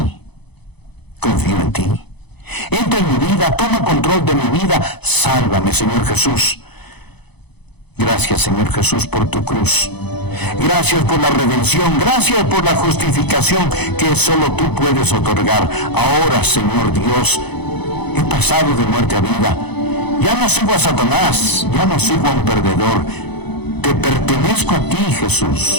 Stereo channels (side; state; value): right; late; 0.98 ms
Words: confío en ti. Entra en mi vida, toma control de mi vida. Sálvame, Señor Jesús. Gracias, Señor Jesús, por tu cruz. Gracias por la redención. Gracias por la justificación que solo tú puedes otorgar. Ahora, Señor Dios, he pasado de muerte a vida. Ya no sigo a Satanás. Ya no sigo a un perdedor. Te pertenezco a ti,